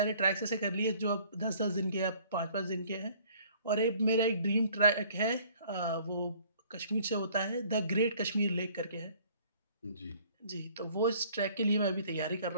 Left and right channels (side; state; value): both; inverted; correlation -0.56